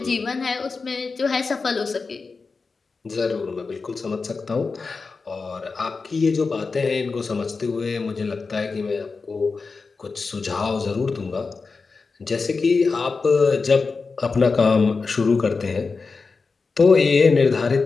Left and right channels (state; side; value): quieter; right; 4.4 dB